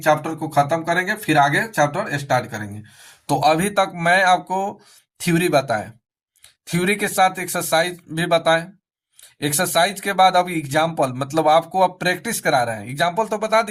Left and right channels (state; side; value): identical; both; correlation 1.00